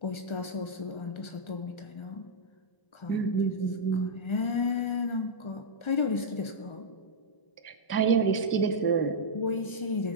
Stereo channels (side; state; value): right; late; 1.3 ms